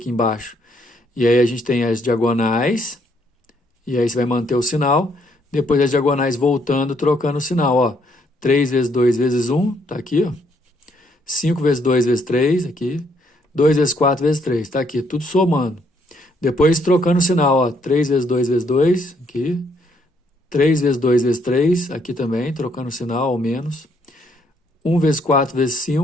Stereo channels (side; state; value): both; normal; correlation 0.71